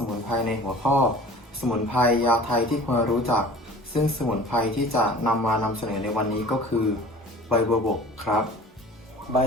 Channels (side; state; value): both; normal; correlation 0.44